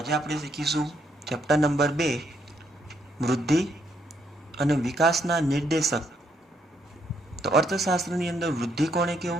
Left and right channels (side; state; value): both; normal; correlation 0.73